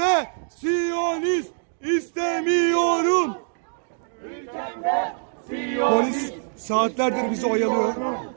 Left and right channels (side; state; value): left; silent; digital silence